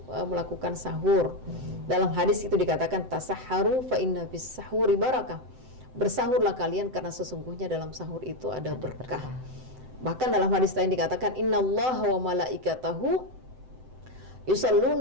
melakukan sahur. Dalam hadis itu dikatakan tasahharu fa inna fis sahuri barakah. Bersahurlah kalian karena sesungguhnya dalam sahur itu ada berkah. Bahkan dalam hadis lain dikatakan innallaha wa malaikatahu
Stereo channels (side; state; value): left; late; 7.8 ms